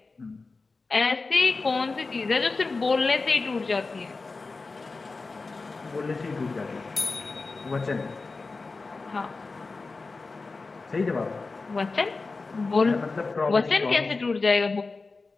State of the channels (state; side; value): quieter; right; 3.9 dB